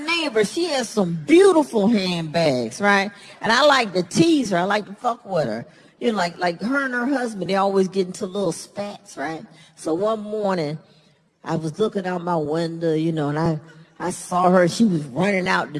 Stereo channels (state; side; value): identical; both; correlation 1.00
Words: she has some beautiful handbags, right? And I like to tease her. I like to fuck with her. You know, like her and her husband, they always get into little spats, right? So one morning, I was looking out my window, you know, and I saw her. She was running out the